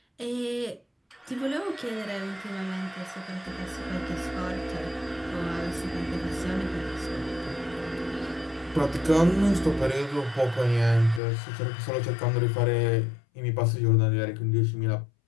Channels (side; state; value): right; drops out; at 11.2 s